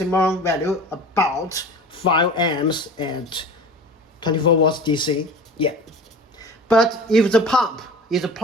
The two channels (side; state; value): both; normal; correlation 0.39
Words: value about 5 amps at 24 volts DC. Yeah. But if the pump is